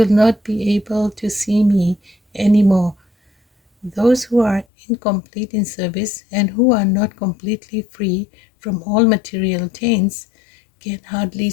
will not be able to see me anymore. Those who are incomplete in service and who are not completely free from all material taints can hardly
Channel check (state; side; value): drops out; right; at 4.7 s